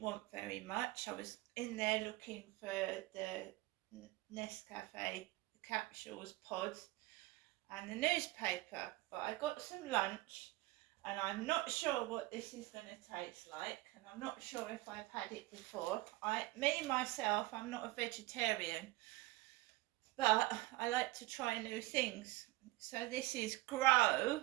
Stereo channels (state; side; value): quieter; left; 19.6 dB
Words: want very much. I was in there looking for the Nescafe capsules, pods, and the newspaper. But I got some lunch, and I'm not sure what this is going to taste like, and I'm not sure if I've had it before. Myself, I'm not a vegetarian, but I like to try new things. So this is Grow,